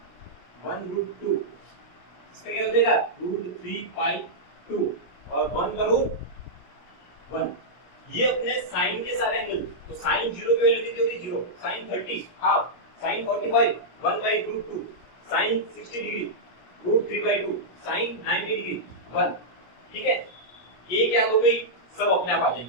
1√2। इसका क्या हो जाएगा? √3/2 और 1 का रूट 1। ये अपने साइन के सारे एंगल। तो साइन 0 की वैल्यू कितनी होगी? 0। Sine 30 half, sine 45 1/√2, sine 60 degree √3/2, sine 90 degree 1। ठीक है, ये क्या हो गई? सब अपने आप आ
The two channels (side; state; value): right; late; 17 ms